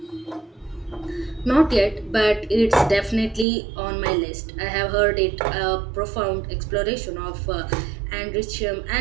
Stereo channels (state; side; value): drops out; left; at 3.5 s